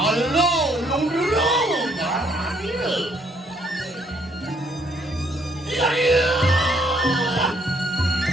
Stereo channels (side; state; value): both; normal; correlation 0.68